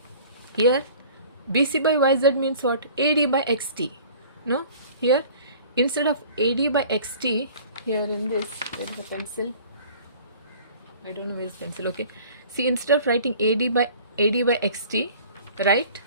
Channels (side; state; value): both; inverted; correlation -0.47